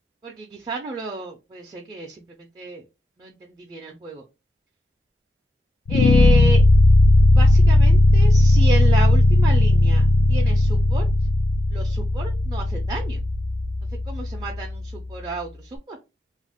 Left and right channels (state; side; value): normal; both; correlation 0.90